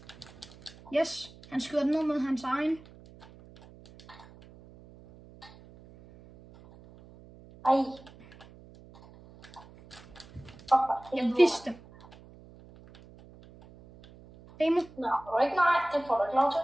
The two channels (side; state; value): right; noise; hum, 22 dB below the sound